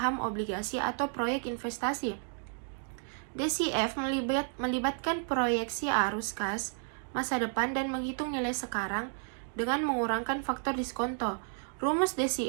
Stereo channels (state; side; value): silent; left; 56 dB below the other